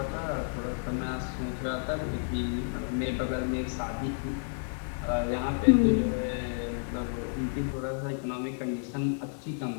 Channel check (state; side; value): silent; right; digital silence